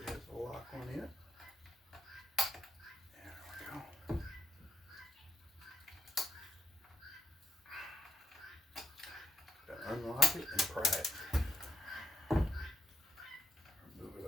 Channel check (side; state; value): both; normal; correlation 0.73